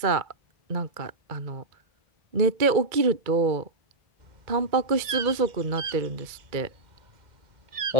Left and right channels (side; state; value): left; late; 2.2 ms